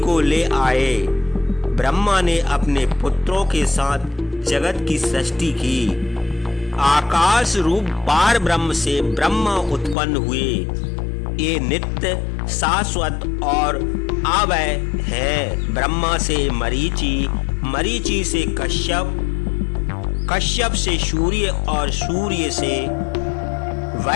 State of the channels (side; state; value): right; drops out; at 10.0 s